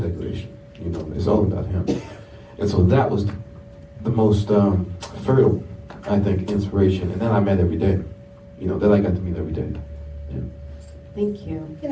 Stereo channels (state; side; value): identical; both; correlation 1.00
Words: It's all about him. And so that was the most fertile, I think, inspiration. And then I met every day. That I got to meet every day. Yeah. Thank you. Can